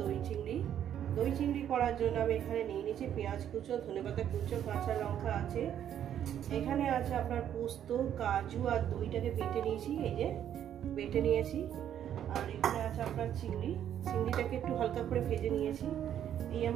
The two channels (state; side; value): quieter; left; 10.1 dB